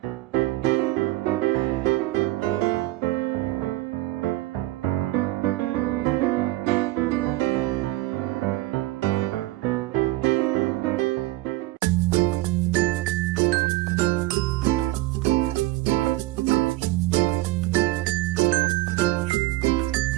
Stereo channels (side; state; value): left; quieter; 18.2 dB